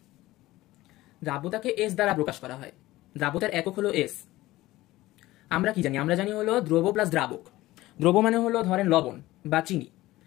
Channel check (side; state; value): right; quieter; 17.5 dB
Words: দ্রাব্যতাকে এস দ্বারা প্রকাশ করা হয়। দ্রাব্যতার একক হলো এস। আমরা কি জানি? আমরা জানি হলো দ্রব প্লাস দ্রাবক। দ্রব মানে হলো ধরেন লবণ বা চিনি,